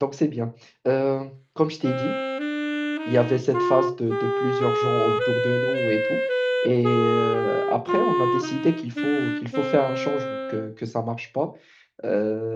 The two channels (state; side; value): identical; both; correlation 1.00